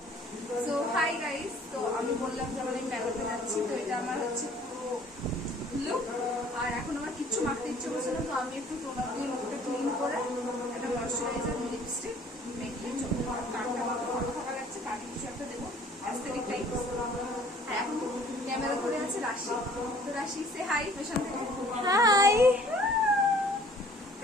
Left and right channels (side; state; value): both; normal; correlation 0.54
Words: So hi guys. তো আমি বললাম যে আমি মেলাতে যাচ্ছি। তো এটা আমার হচ্ছে পুরো লুক। আর এখন আমার কিচ্ছু মাখতে ইচ্ছে করছে না। তো আমি একটু টোনার দিয়ে মুখটা ক্লিন করে একটা ময়শ্চারাইজার, লিপস্টিক মেখে কানটা ভালো থাকা যাচ্ছে, কানে কিছু একটা দেবো, অ্যাস্থেটিক টাইপ। আর এখন ক্যামেরা করে আছে রাশি। তো রাশি সে হাই পেছন থেকে। হাই।